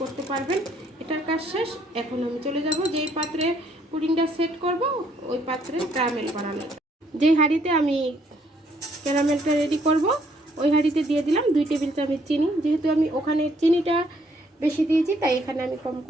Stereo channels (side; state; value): both; normal; correlation 0.67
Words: করতে পারবেন। এটার কাজ শেষ। এখন আমি চলে যাব যেই পাত্রে পুডিংটা সেট করব ওই পাত্রে ক্যারামেল বানানো। যেই হাঁড়িতে আমি ক্যারামেলটা রেডি করব ওই হাঁড়িতে দিয়ে দিলাম 2 টেবিল চামচ চিনি। যেহেতু আমি ওখানে চিনিটা বেশি দিয়েছি তাই এখানে আমি কম